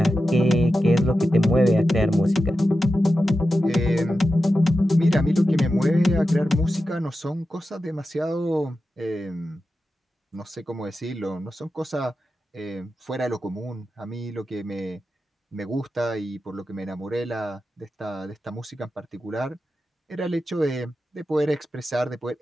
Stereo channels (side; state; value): both; normal; correlation 0.91